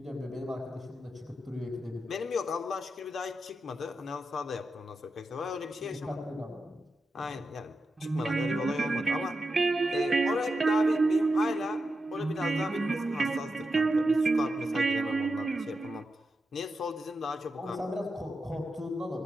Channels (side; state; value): both; normal; correlation 0.88